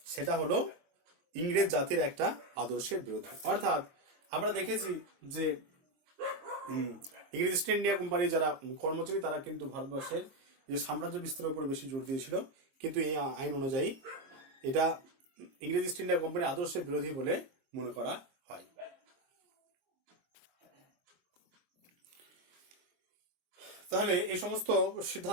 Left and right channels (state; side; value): late; left; 23 ms